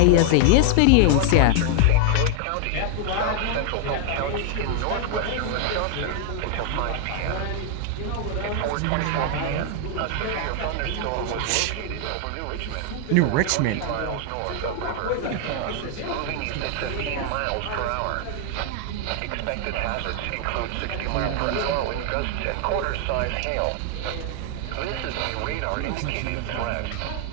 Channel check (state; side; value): different; both; correlation 0.00